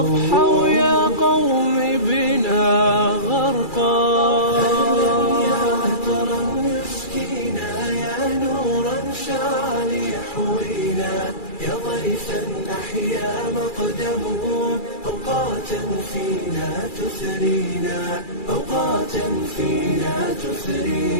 يا قوم بنا غرقا يا ضيفا أحيا مقدمه أوقاتا فينا تثرينا أوقاتا فينا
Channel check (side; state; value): right; late; 2.3 ms